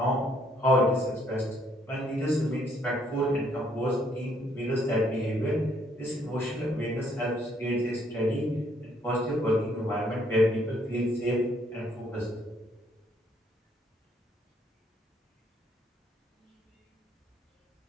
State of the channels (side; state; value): both; normal; correlation 0.68